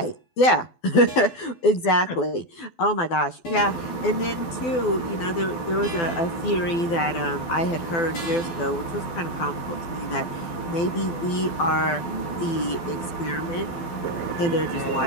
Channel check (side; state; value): right; late; 12 ms